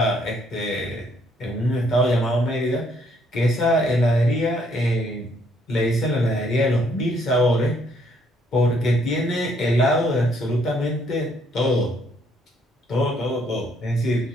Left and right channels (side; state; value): both; normal; correlation 0.68